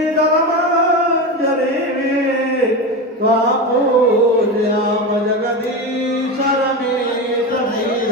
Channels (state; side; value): normal; both; correlation 0.20